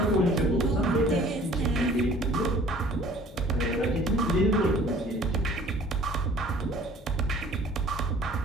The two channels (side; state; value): both; normal; correlation 0.51